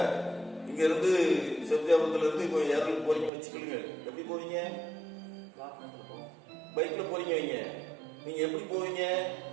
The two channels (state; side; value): drops out; left; at 3.3 s